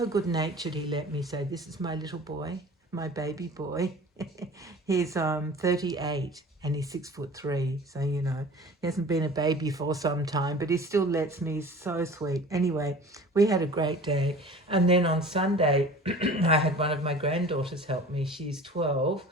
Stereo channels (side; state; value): both; normal; correlation 0.42